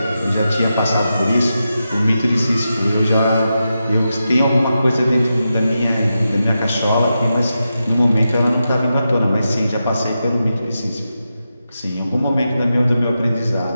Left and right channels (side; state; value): both; inverted; correlation -0.89